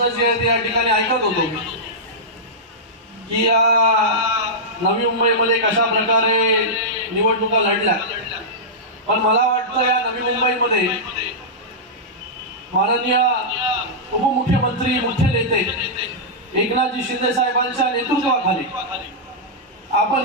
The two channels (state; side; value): normal; both; correlation -0.11